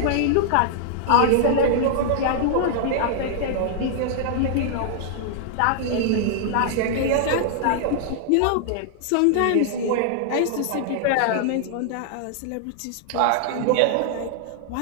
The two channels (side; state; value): both; different; correlation -0.01